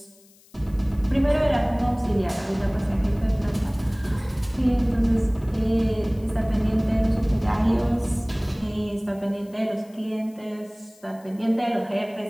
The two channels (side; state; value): left; noise; hiss, 28 dB below the sound